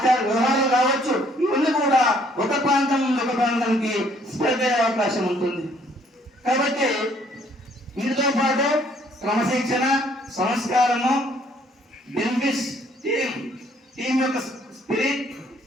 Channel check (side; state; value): both; normal; correlation 0.63